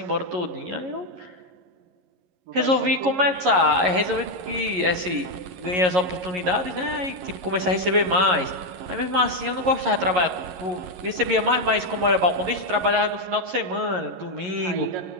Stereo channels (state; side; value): late; left; 11 ms